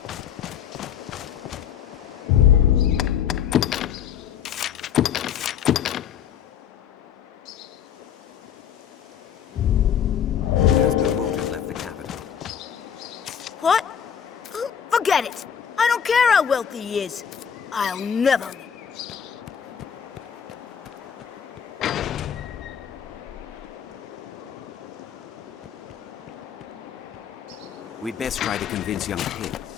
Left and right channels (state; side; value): quieter; right; 8.4 dB